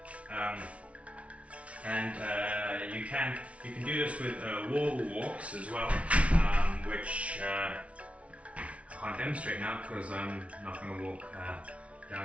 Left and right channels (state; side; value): late; left; 0.063 ms